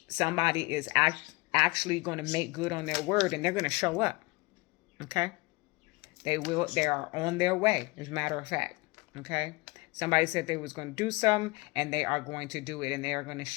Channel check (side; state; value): right; quieter; 24.7 dB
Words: somebody is actually going to make good on their word, and they're going to show up, okay? They are on their way, as a matter of fact, okay? Somebody said they was going to do something, and they are going to do it, and they are going to